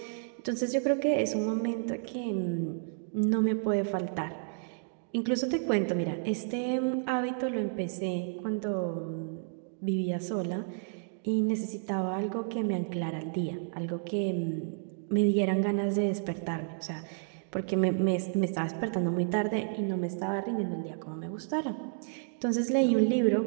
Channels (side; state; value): left; silent; digital silence